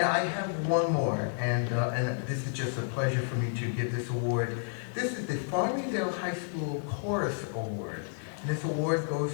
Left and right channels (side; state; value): right; silent; digital silence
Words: I have one more, and this is just a pleasure for me to give this award. This is the Farmingdale High School Chorus Award. And this award